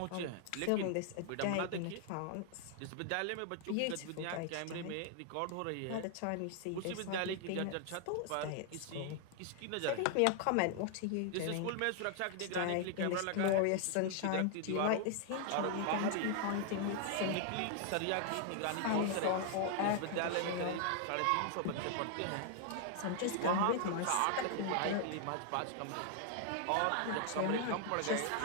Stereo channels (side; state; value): both; different; correlation 0.00